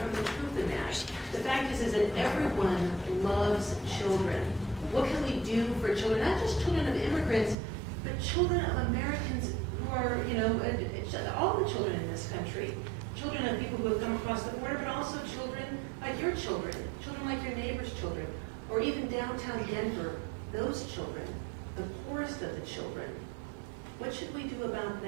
the truth than that. The fact is that everyone loves children. What can we do for children? Not just children of immigrants, but children of Americans who are, all the children in this country. Children of people who have come across the border, but also children like your children like your neighbor's children, or even downtown Denver, those children, the poorest of the children. What should we do about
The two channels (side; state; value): left; drops out; at 7.6 s